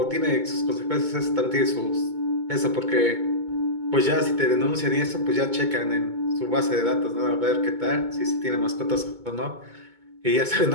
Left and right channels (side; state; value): left; late; 2.2 ms